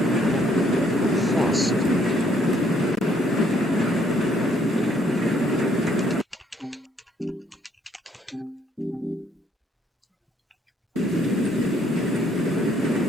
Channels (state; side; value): normal; both; correlation 0.67